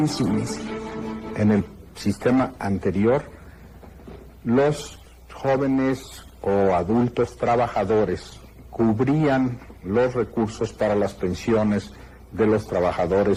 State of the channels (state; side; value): identical; both; correlation 1.00